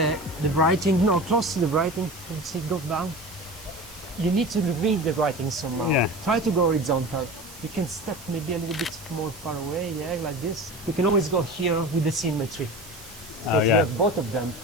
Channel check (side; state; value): right; noise; hiss, 18 dB below the sound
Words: writing. No, close to the writing. Let's see, go down. You need to read the writing somehow. Yeah. Try to go horizontal. You can step maybe a little bit more far away, like this. You can always go here with the symmetry. Because you have both of them,